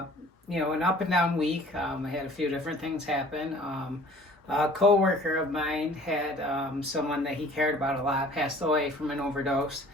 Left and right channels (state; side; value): normal; both; correlation 0.50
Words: up and down week. I had a few different things happen. A co-worker of mine had someone that he cared about a lot passed away from an overdose,